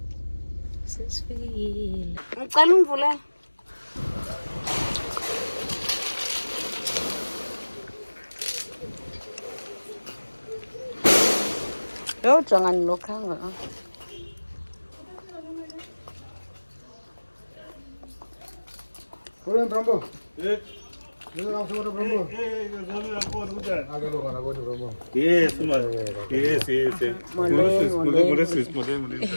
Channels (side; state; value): both; inverted; correlation -1.00